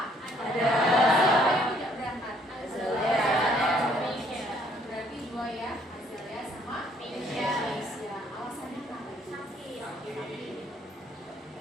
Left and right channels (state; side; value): normal; both; correlation 0.64